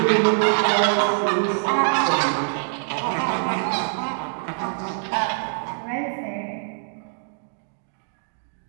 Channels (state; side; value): silent; left; digital silence